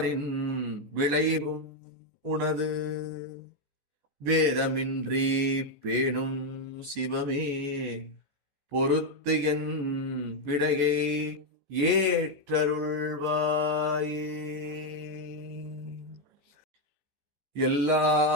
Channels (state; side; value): late; left; 14 ms